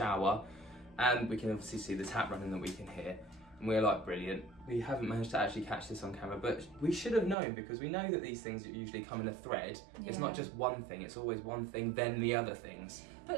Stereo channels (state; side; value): drops out; left; at 7.4 s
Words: and we can obviously see the tap running that we can hear. And we're like, brilliant. We haven't managed to actually catch this on camera, but we should have known because we know that these things usually come in a thread. It's not Yeah. just one thing, it's always one thing, then the other things. But